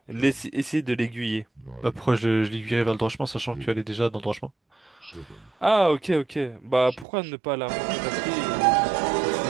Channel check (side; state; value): left; drops out; at 7.1 s